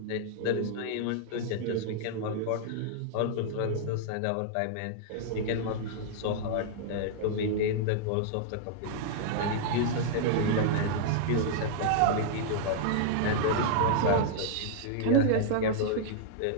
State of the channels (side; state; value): both; different; correlation -0.01